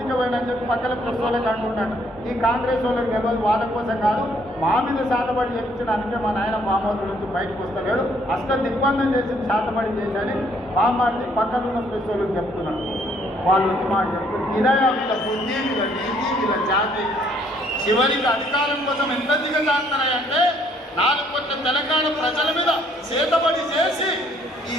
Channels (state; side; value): normal; both; correlation 0.66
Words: పోయినని చెప్పి పక్కన ప్రెస్ వాళ్ళకి అంటున్నాడు. ఈ కాంగ్రెస్ వాళ్ళకి తెలియదు, వాళ్ళ కోసం కాదు, మా మీద శాతపడి చెప్పించడానికే మా నాయన బామ్మోతుల నుంచి బయటకు వస్తలేడు, అసలు దిగ్బంధం చేసి శాతపడి చేశాని బామ్మాడిని పక్కన ఉన్న ప్రెస్ వాళ్ళకి చెప్తున్నాడు. వాళ్ళు వచ్చి మాట చెప్తున్నారు, ఇదే వీళ్ళ బుద్ధి, వీళ్ళ నీతి, వీళ్ళ జాతి. చివరికి అధికారం కోసం ఎంత దిగజారుతారంటే 4 కోట్ల తెలంగాణ ప్రజల మీద చేతబడి చేసి